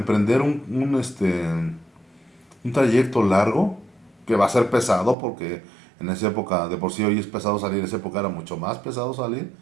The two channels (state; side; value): drops out; left; at 5.2 s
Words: un trayecto largo que va a ser pesado porque En esa época, de por sí hoy es pesado salir, en esa época era mucho más pesado salir,